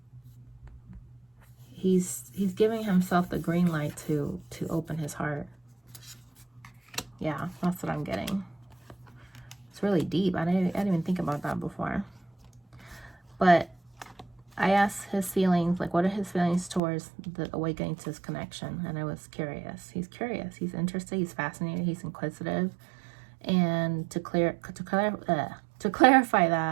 he's giving himself the green light to open his heart. Yeah, that's what I'm getting. It's really deep. I didn't even think about that before. But I asked his feelings, like, what are his feelings towards the awakening to his connection? And I was curious. He's curious. He's interested. He's fascinated. He's inquisitive. And to clarify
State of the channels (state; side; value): drops out; left; at 16.8 s